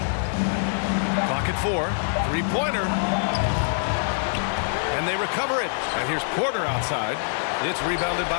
Clock at 4. Three-pointer. And they recover it. And here's Porter outside. It's rebounded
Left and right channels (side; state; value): right; silent; 62 dB below the other